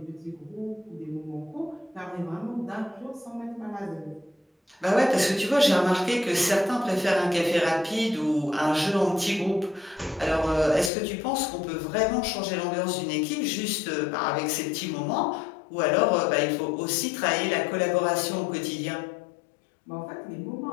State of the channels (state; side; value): drops out; right; at 10.9 s